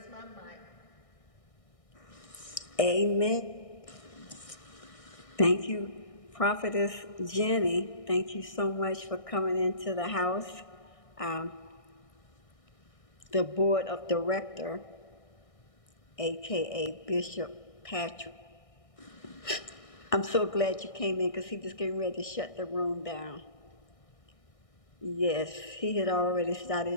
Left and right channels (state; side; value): late; right; 1.6 ms